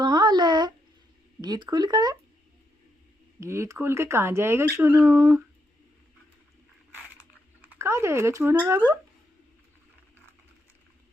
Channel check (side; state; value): both; normal; correlation 0.80